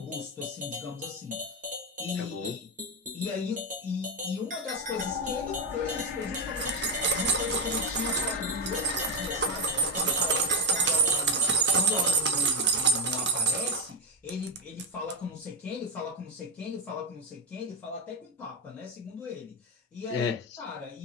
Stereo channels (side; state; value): both; normal; correlation 0.11